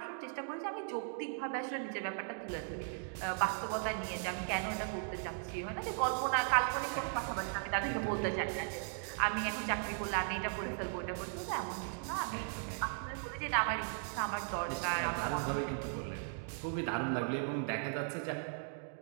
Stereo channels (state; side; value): silent; left; 53 dB below the other